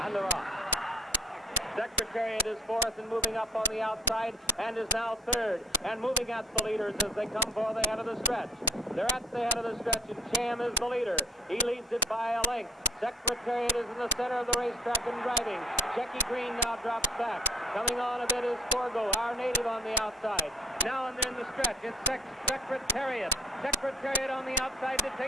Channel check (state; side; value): normal; both; correlation 0.53